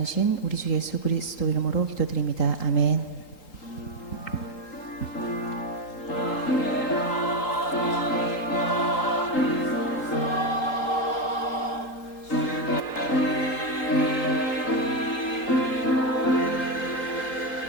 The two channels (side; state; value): right; late; 3.8 ms